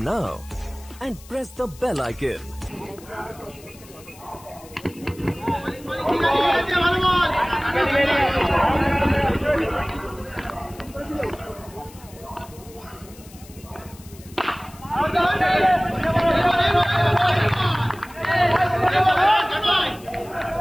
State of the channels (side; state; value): left; noise; hiss, 22 dB below the sound